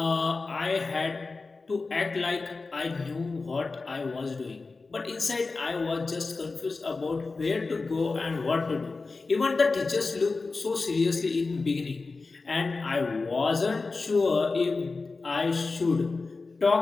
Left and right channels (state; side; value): quieter; right; 3.9 dB